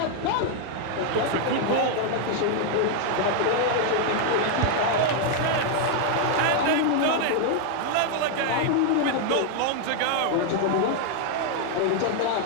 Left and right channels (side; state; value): both; different; correlation 0.00